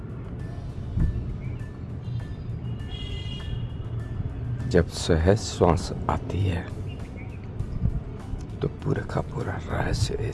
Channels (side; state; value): both; identical; correlation 1.00